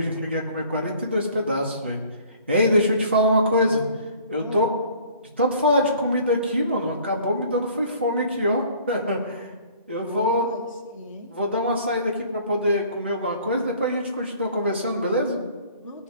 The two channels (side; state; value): both; inverted; correlation -0.53